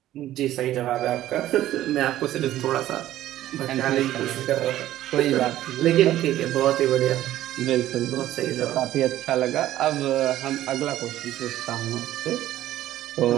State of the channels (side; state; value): left; quieter; 13.6 dB